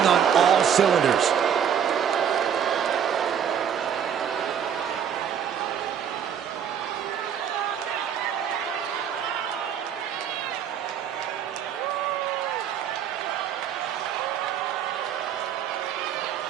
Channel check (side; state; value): left; quieter; 8.5 dB